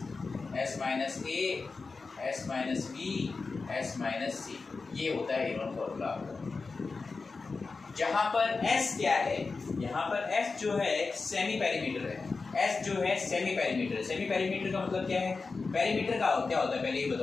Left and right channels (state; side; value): quieter; right; 4.2 dB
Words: S minus A, S minus B, S minus C. ये होता है हेरोन फॉर्मूला। जहाँ पर एस क्या है, यहाँ पर एस जो है सेमी पेरीमीटर है। एस जो है सेमी पेरीमीटर। सेमी पेरीमीटर का मतलब क्या है, पेरीमीटर का क्या होता है पहले ये